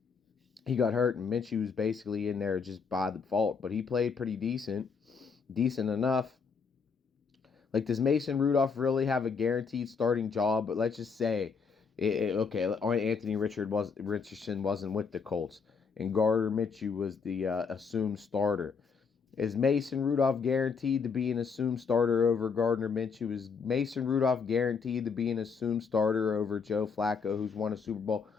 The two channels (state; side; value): quieter; right; 5.6 dB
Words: He got hurt, and Minshew was basically in there just by default. But he played pretty decent enough. Like, does Mason Rudolph really have a guaranteed starting job? But let's just say, okay, Anthony Richardson wasn't with the Colts, and Gardner Minshew was the assumed starter. Is Mason Rudolph guaranteed to be an assumed starter over Gardner Minshew? Is Mason Rudolph guaranteed to be an assumed starter over Joe Flacco, who's won a Super Bowl,